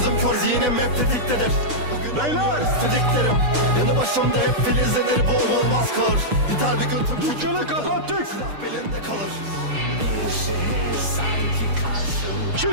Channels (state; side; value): late; left; 6.7 ms